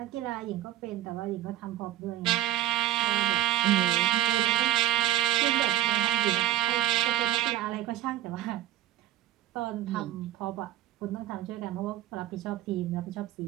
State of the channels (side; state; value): left; quieter; 13.4 dB